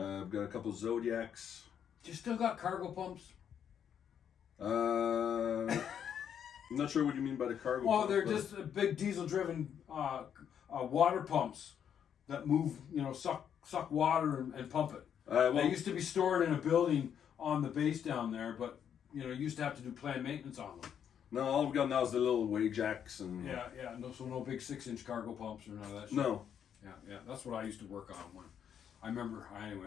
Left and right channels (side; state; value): right; quieter; 8.6 dB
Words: got a couple Zodiacs. You still got cargo pumps? I'm not sure what you mean by the cargo. Well, pump, they're but- just big diesel-driven water pumps that move, suck water and pump it. well, They used to be stored in a building on the base down there, but you used to have to do planned maintenance on them. no, all we've got now is the little Wajacks and Yeah, yeah. No big 6-inch cargo pumps or none of that shit. no. Yeah, yeah. That's what I used to work on when I remember.